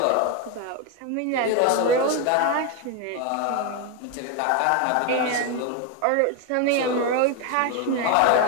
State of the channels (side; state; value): both; different; correlation 0.02